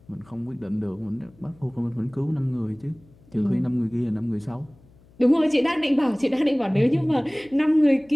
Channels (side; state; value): left; noise; hum, 28 dB below the sound